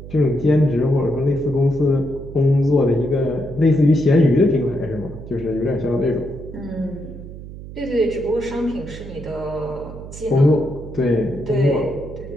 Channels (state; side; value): noise; right; hum, 13 dB below the sound